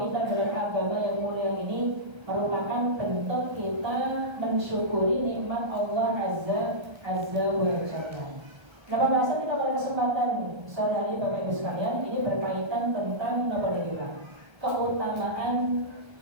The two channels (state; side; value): late; left; 1.3 ms